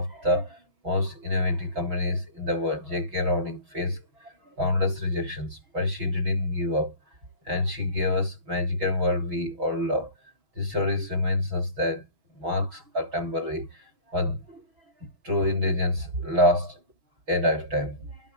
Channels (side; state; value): left; late; 6.2 ms